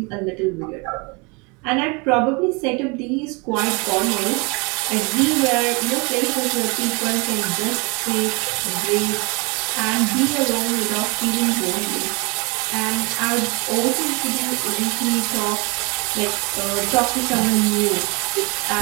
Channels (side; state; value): left; quieter; 30.0 dB